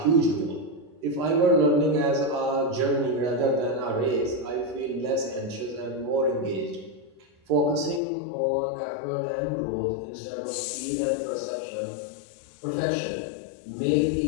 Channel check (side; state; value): right; drops out; at 8.0 s